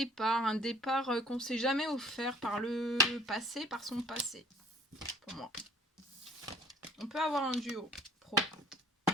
un départ qu'on ne s'est jamais offert par le passé, par son passé, pour moi. On peut avoir un duo pro.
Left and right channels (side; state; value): both; normal; correlation 0.54